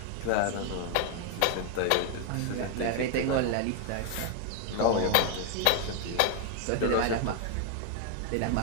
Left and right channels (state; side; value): different; both; correlation 0.01